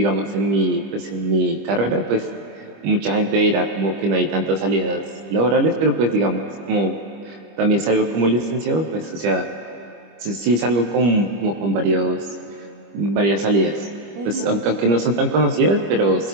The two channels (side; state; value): left; late; 25 ms